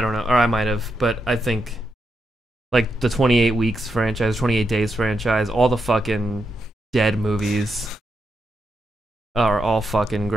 don't know. Or I might have. But I think like the 28 Weeks franchise, 28 Days franchise, all the fucking Dead movies are all fucking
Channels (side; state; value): both; normal; correlation 0.83